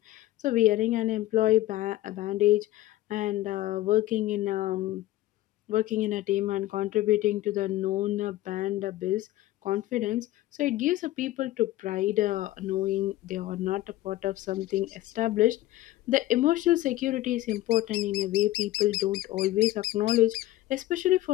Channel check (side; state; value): right; quieter; 15.9 dB